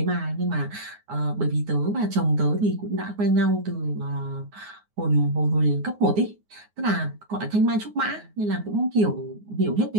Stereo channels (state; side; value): late; left; 9.6 ms